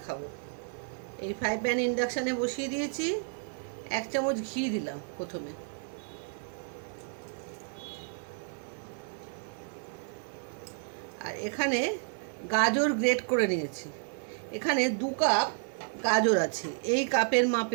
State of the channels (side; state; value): left; silent; 57 dB below the other